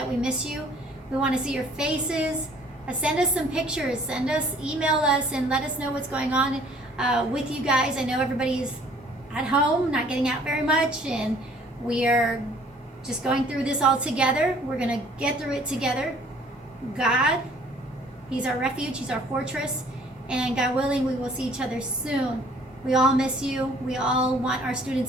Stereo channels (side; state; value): both; normal; correlation 0.56